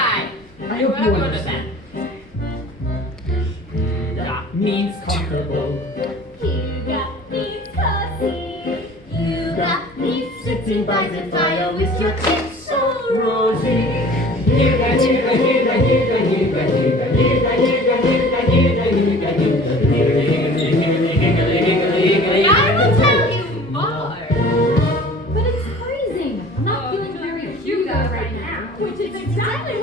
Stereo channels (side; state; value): both; normal; correlation 0.46